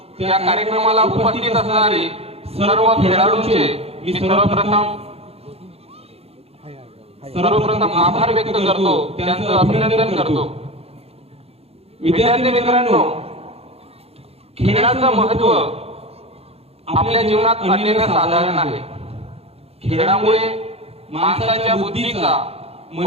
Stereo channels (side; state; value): left; late; 0.29 ms